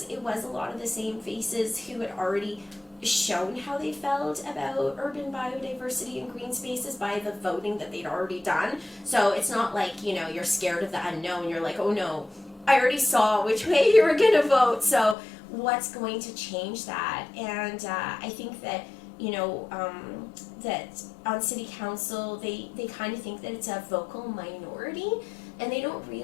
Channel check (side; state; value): right; drops out; at 15.2 s